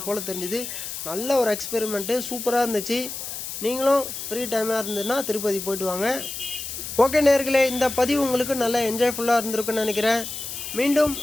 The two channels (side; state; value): left; noise; hiss, 7 dB below the sound